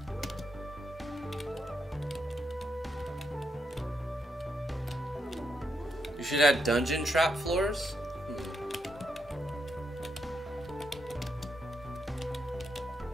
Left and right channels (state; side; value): normal; both; correlation 0.81